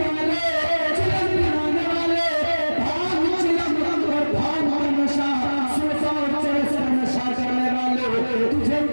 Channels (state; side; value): inverted; both; correlation -1.00